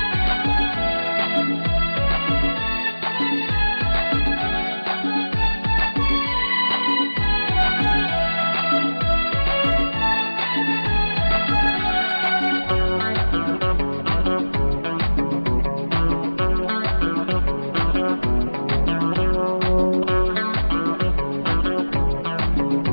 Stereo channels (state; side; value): inverted; both; correlation -1.00